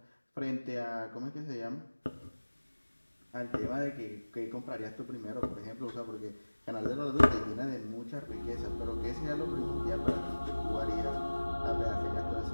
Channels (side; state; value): both; inverted; correlation -1.00